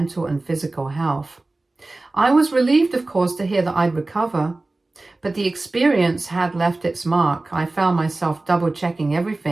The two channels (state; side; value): quieter; left; 3.0 dB